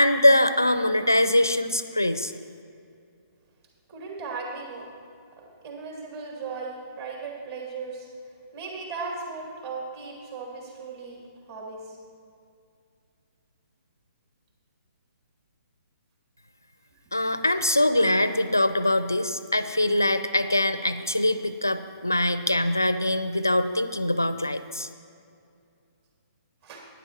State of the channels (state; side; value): inverted; both; correlation -0.84